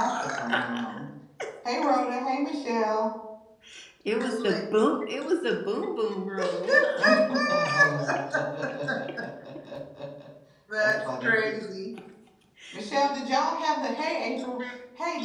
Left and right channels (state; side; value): identical; both; correlation 1.00